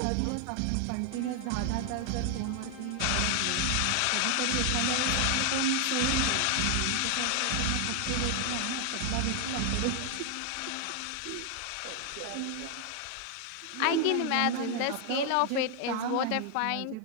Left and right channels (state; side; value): different; both; correlation 0.00